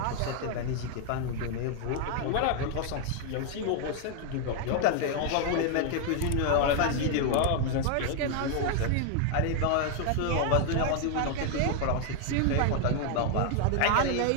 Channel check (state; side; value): different; both; correlation 0.00